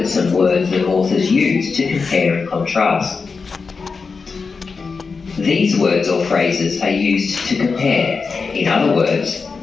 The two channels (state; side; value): quieter; right; 4.8 dB